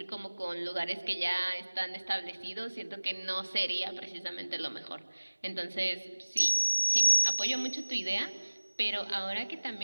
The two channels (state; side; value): inverted; both; correlation -1.00